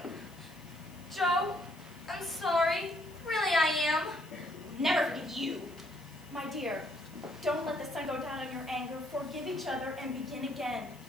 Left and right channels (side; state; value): left; noise; hiss, 25 dB below the sound